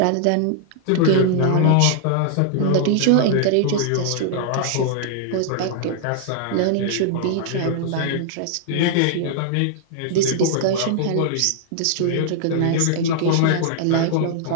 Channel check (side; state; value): both; different; correlation -0.01